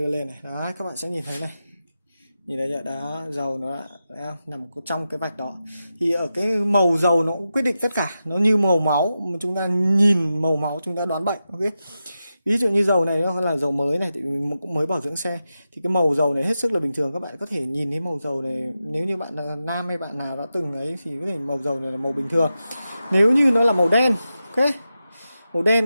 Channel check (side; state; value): both; inverted; correlation -0.90